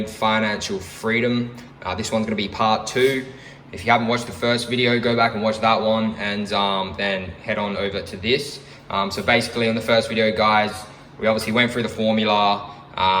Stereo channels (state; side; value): identical; both; correlation 1.00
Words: financial freedom. This one's gonna be part 2. If you haven't watched the first video, go back and watch that one and then head on over to this. So basically on the first video guys, we obviously went through the formula,